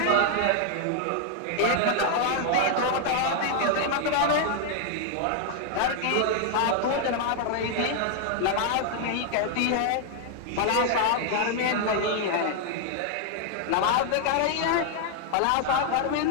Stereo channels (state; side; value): different; both; correlation 0.00